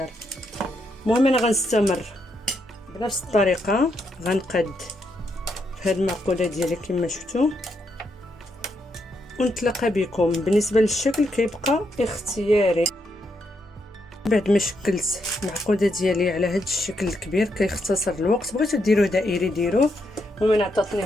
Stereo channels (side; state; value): both; normal; correlation 0.79